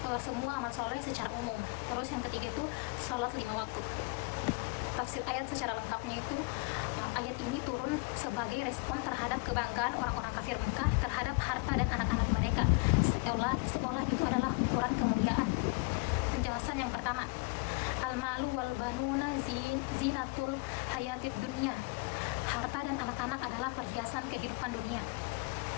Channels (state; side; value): quieter; right; 29.0 dB